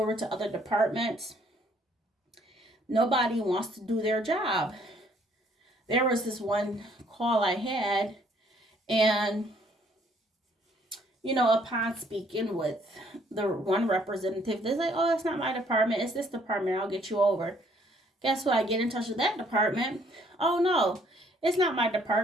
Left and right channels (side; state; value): both; normal; correlation 0.64